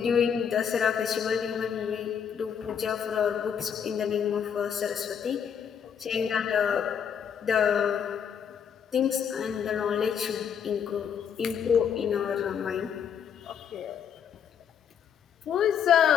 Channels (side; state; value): right; quieter; 7.9 dB